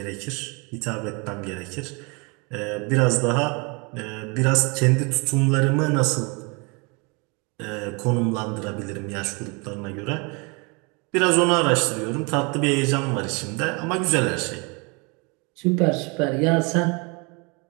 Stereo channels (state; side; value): quieter; left; 30.5 dB